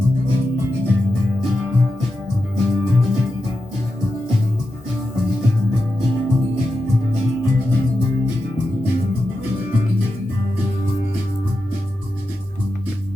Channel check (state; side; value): normal; both; correlation 0.89